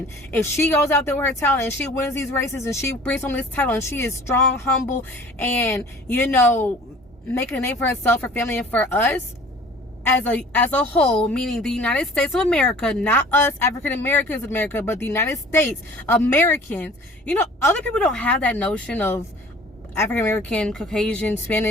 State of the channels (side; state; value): both; normal; correlation 0.48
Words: If she goes out there with her talent and she wins these races and she brings home this title and she is strong, humble, and, you know, making a name for herself, her family, and for us, as a whole, meaning the United States of America, not us African Americans in America, but the United States Americans. You know, other people don't have that notion of African American, Caucasian,